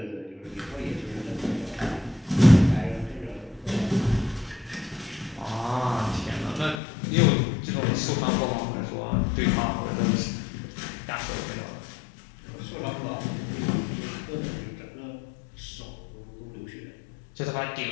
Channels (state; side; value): drops out; right; at 6.8 s